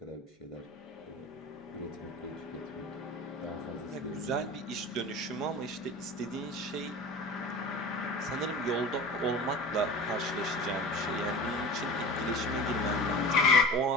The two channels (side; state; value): both; normal; correlation 0.35